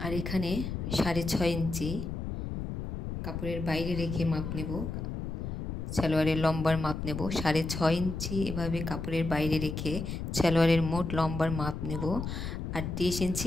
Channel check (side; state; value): left; noise; rumble, 5 dB below the sound